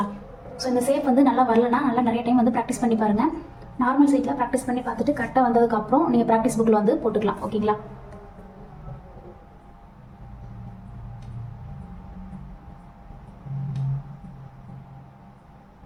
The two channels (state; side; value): identical; both; correlation 1.00